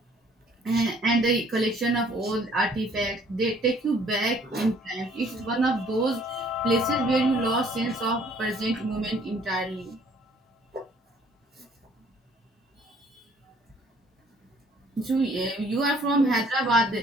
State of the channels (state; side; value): normal; both; correlation 0.59